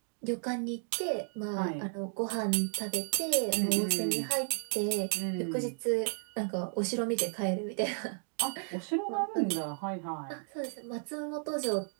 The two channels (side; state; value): left; silent; 56 dB below the other